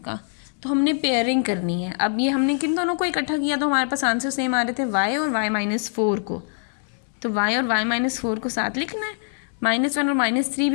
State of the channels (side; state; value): right; silent; 55 dB below the other